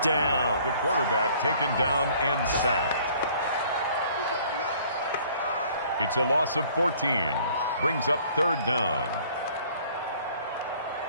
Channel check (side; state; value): both; inverted; correlation -0.56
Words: down. The quarterback taken down and sacked. It's a loss of 14. Brings up 3rd down.